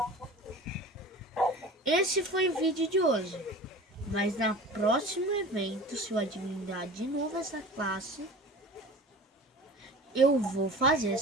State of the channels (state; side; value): normal; both; correlation 0.38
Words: Esse foi o vídeo de hoje. Mas na próximo evento, se eu adivinhar de novo essa classe, eu vou fazer